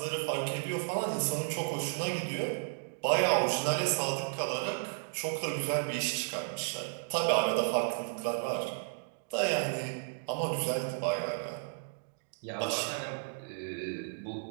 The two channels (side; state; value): left; silent; digital silence